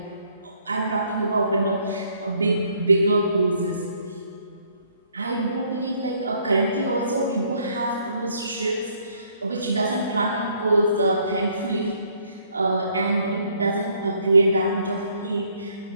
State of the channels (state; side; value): inverted; both; correlation -0.66